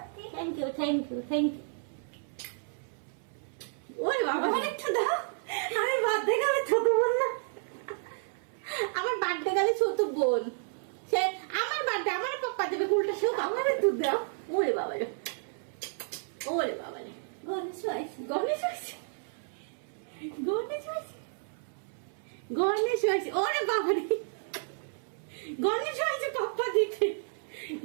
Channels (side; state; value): left; silent; 57 dB below the other